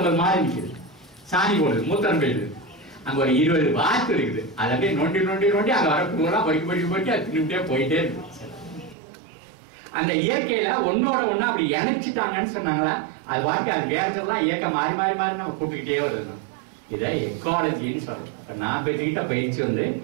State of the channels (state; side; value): drops out; left; at 9.0 s